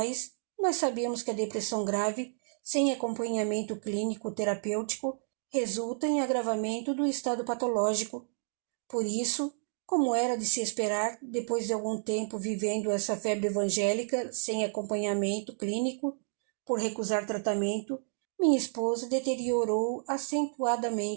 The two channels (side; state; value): left; silent; digital silence